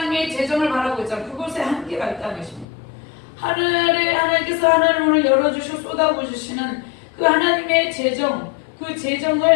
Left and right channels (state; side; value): drops out; right; at 2.7 s